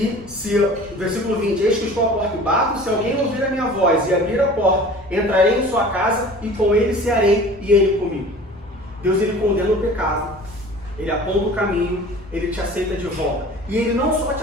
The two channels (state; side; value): noise; left; rumble, 24 dB below the sound